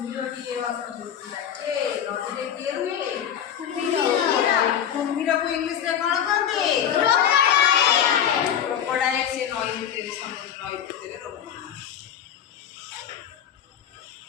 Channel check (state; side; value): quieter; right; 9.2 dB